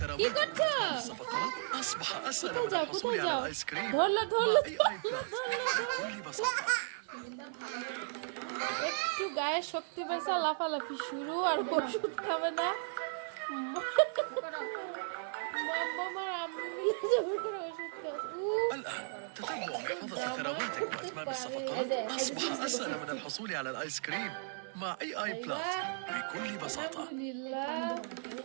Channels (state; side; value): silent; left; 54 dB below the other